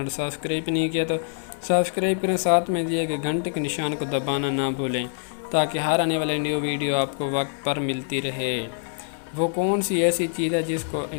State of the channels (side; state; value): right; silent; 60 dB below the other